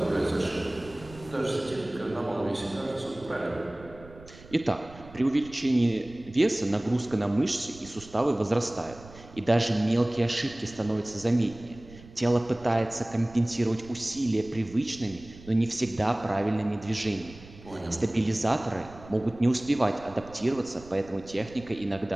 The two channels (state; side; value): noise; right; rumble, 19 dB below the sound